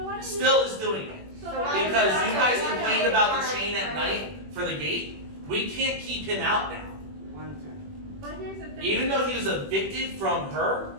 Still is doing it. Because you guys complained about the chain at night for the gate, we can't keep him out now. Even though he was evicted from her,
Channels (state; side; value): late; left; 21 ms